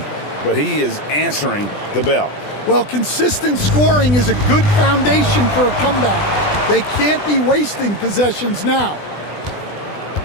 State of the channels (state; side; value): late; right; 20 ms